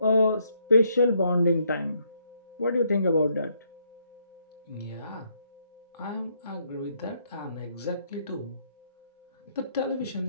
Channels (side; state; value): both; inverted; correlation -0.72